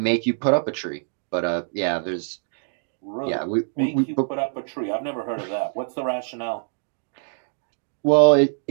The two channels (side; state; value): left; silent; digital silence